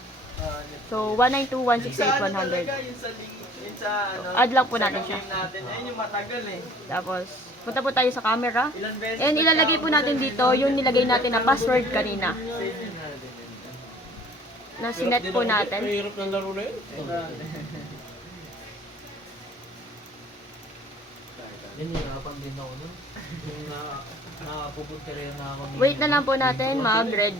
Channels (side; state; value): both; normal; correlation 0.52